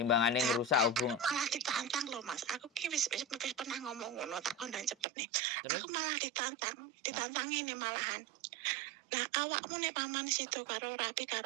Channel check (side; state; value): left; drops out; at 5.1 s